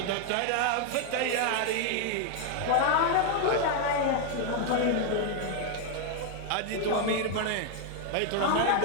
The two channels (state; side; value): different; both; correlation 0.00